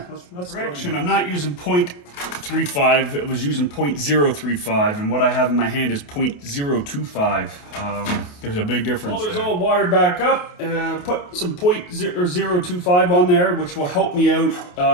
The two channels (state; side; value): late; right; 28 ms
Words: let's correction. I'm not using 0.35. It was using 0.035, and what I have in my hand is 0.025. There's a big difference. Welder's all wired back up. Put some 0.025 on there, which will help me out